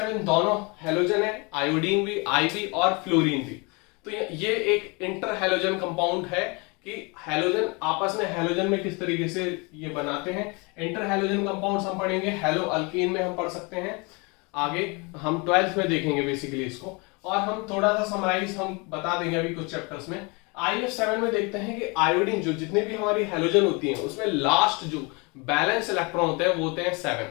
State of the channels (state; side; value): quieter; right; 29.4 dB